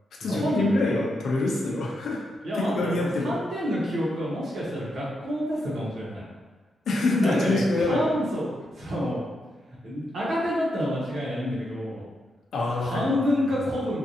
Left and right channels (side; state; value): both; normal; correlation 0.82